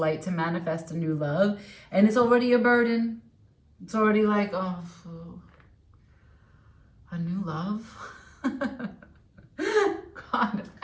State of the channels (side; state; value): both; identical; correlation 1.00